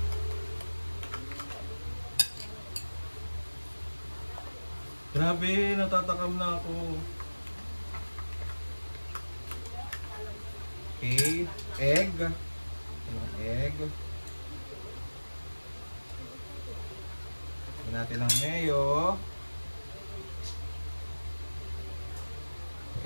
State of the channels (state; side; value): inverted; both; correlation -1.00